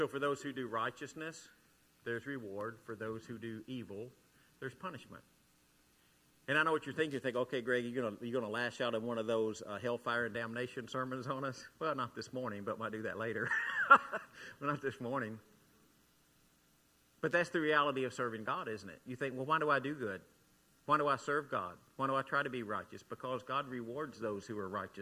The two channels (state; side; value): identical; both; correlation 1.00